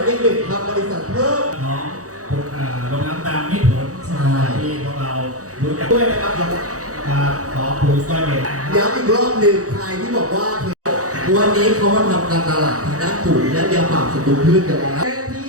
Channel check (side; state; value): left; late; 0.66 ms